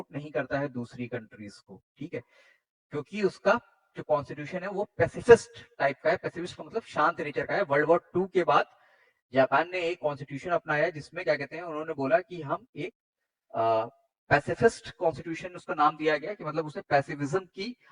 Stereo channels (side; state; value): both; identical; correlation 1.00